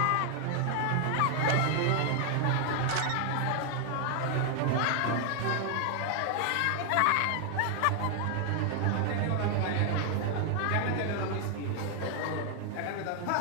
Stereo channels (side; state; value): both; different; correlation 0.00